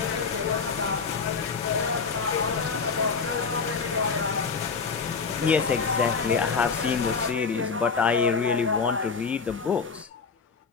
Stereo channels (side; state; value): right; quieter; 5.3 dB